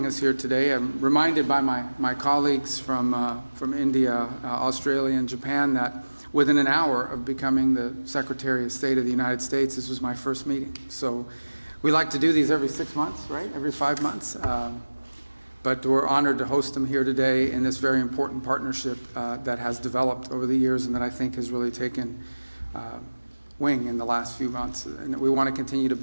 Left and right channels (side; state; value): both; inverted; correlation -1.00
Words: us here today. I'm reminded by my colleagues from India, Australia, and Japan that within an hour of becoming the Secretary of State of the United States, this was my first meeting. So we like to do these every 6 months, right? Every 5 months. But we're honored to host them here today in this very important partnership that has developed over the years and that I think has really taken wing in the last few months, and we want to continue to